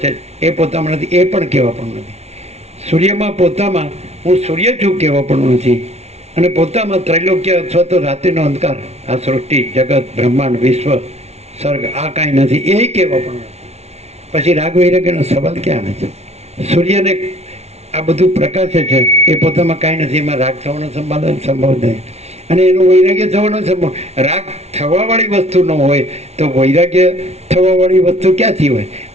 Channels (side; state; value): left; late; 0.31 ms